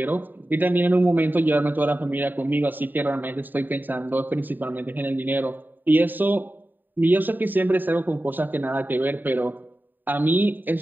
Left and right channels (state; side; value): late; left; 0.090 ms